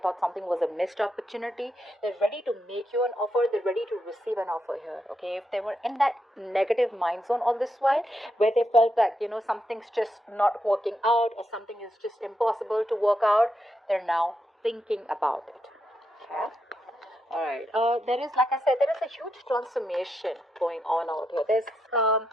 something was a missed opportunity. They're ready to make you an offer. They're ready to receive an offer here. Okay, if they were in that negative mind zone all this while where they felt that, something's just not working out or something is just impossible to work out, they're now thinking about it. Okay. All right. There is, like I said, there is a huge transformation going on out here. There's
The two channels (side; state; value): both; normal; correlation 0.83